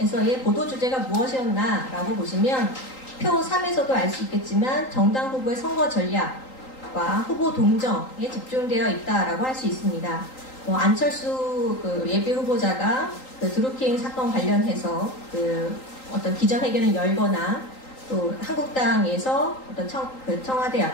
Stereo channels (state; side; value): late; right; 3.8 ms